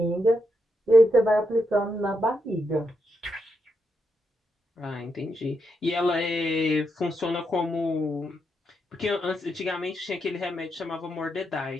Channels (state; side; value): normal; both; correlation 0.82